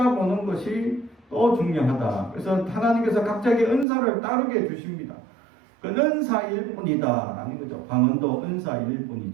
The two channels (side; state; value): left; drops out; at 3.9 s